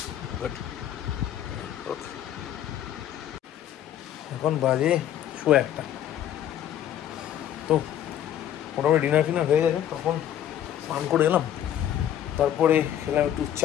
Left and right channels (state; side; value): quieter; right; 10.8 dB